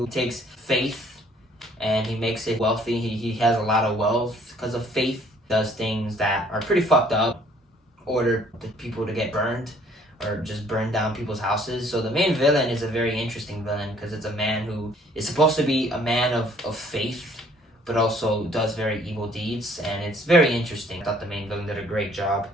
takes faith and he makes it wealthy. He has a lot of wealth because of faith. Does things that are pretty fucked up, order the people to get burned or just burn down people's houses. So the main villain is a very interesting villain because it's a man who is supposed to be a man of faith, but also does very evil deeds, and it's very interesting. I thought the main villain did a great job.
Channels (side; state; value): both; normal; correlation 0.60